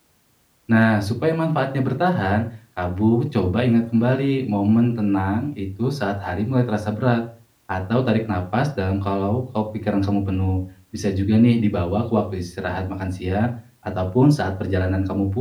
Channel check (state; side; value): identical; both; correlation 1.00